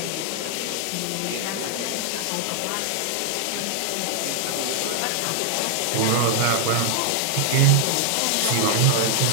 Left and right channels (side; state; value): both; different; correlation 0.00